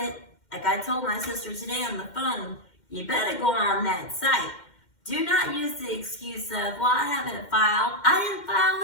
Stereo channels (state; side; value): late; right; 2.1 ms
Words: like I told my sister today on the phone, you better go on that site. Do not use the excuse of, well, I haven't filed. I didn't file